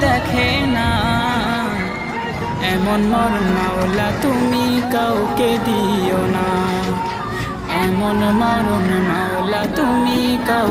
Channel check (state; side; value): identical; both; correlation 1.00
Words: দেখে না। এমন মরণ মাওলা তুমি কাউকে দিও না, এমন মরণ মাওলা তুমি